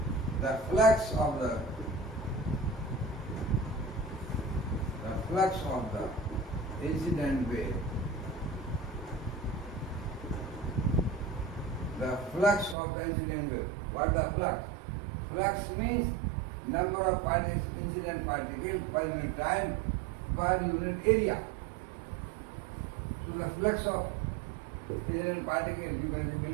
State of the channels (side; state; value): left; drops out; at 12.8 s